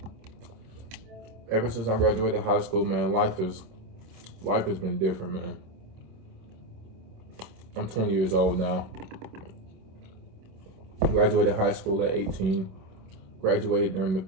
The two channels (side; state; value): left; late; 26 ms